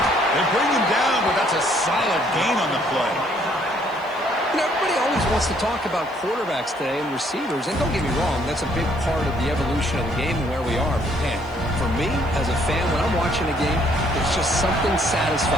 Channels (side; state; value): right; noise; hiss, 29 dB below the sound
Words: They bring him down, but that's a solid gain on the play. You know, everybody always wants to talk about quarterbacks today and receivers, and don't get me wrong, that's a big part of the evolution of the game and where we are. But man, for me, as a fan, when I'm watching a game, there's just something